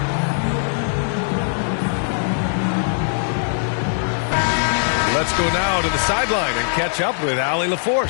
Let's go now to the sideline and catch up with Allie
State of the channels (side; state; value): right; silent; digital silence